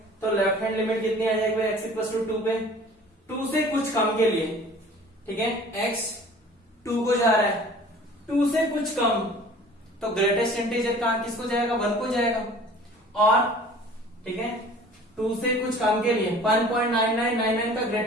तो लेफ्ट हैंड लिमिट कितनी आ जाएगी x इक्वल टू 2 पे, 2 से कुछ कम के लिए, ठीक है, x 2 को जा रहा है, 2 से कुछ कम, तो ग्रेटेस्ट इंटीजर कहां किसको जाएगा 1 को जाएगा, और ठीक है। 2 से कुछ काम के लिए 1.9999 का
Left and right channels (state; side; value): normal; both; correlation 0.47